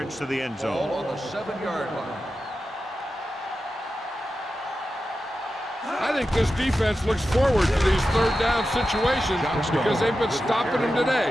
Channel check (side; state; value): both; normal; correlation 0.91